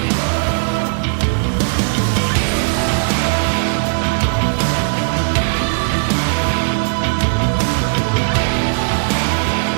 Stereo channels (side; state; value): left; silent; 68 dB below the other